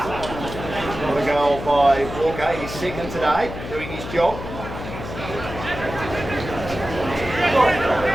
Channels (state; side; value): noise; left; hum, 9 dB below the sound